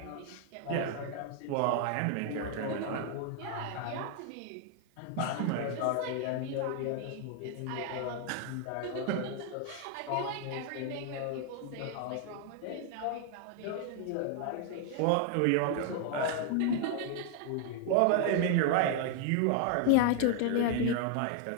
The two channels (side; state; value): both; different; correlation 0.00